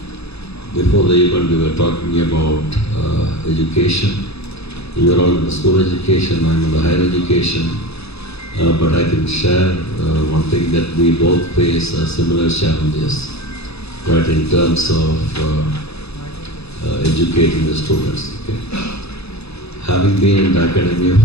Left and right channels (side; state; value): right; late; 0.79 ms